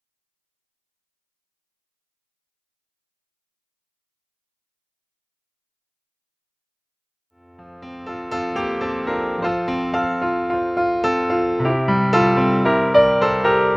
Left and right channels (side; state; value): both; identical; correlation 1.00